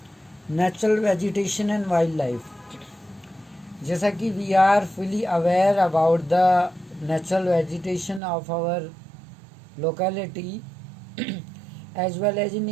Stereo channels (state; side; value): drops out; left; at 8.2 s